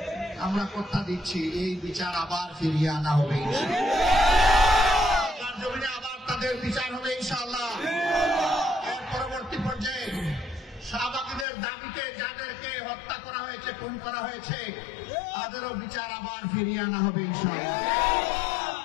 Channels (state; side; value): drops out; right; at 11.5 s